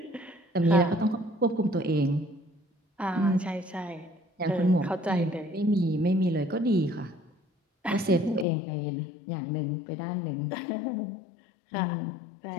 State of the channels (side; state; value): right; drops out; at 8.5 s